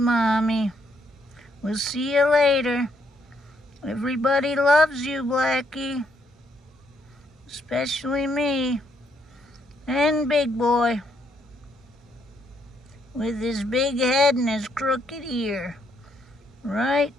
We'll see you later. Everybody loves you, Blackie. Especially me. And Big Boy. With his big head and his crooked ear. Right?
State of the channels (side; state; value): both; normal; correlation 0.73